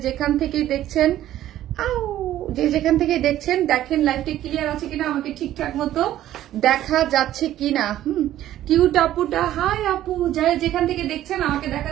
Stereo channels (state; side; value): quieter; left; 13.0 dB